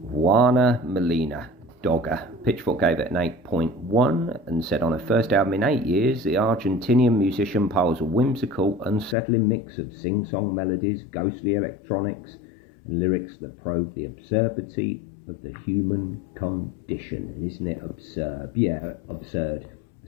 Juana Molina DOGA. Pitchfork gave it an 8.1 and said on her first album in 8 years, the Argentinian musician piles a whimsical, unsettling mix of sing-song melodies, ghostly electronics, and lyrics that probe the absurdity of the human condition. And isn't it absurd? Yeah, absurd.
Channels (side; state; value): right; drops out; at 9.2 s